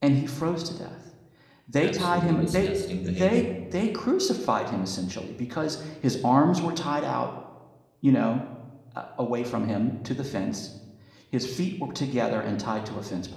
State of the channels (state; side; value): identical; both; correlation 1.00